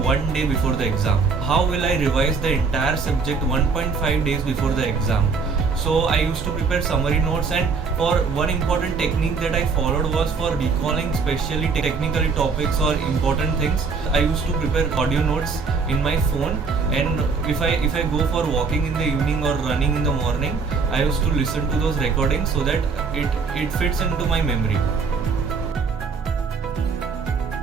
day before the exam. How will I revise the entire subject 1.5 days before the exam. So I used to prepare summary notes, and for one important technique that I followed was for recalling especially technical topics or important things. I used to prepare audio notes in my phone, and if I go for walking in the evening or running in the morning, I used to listen to those recordings so that it fits into my memory.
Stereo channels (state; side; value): quieter; left; 4.9 dB